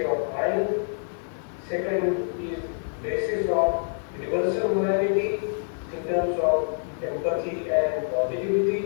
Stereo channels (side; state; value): right; silent; digital silence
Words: of mind. Second is basis of universal morality in terms of empathy and